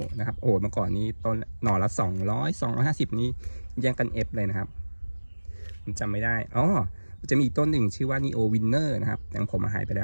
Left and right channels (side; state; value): both; inverted; correlation -1.00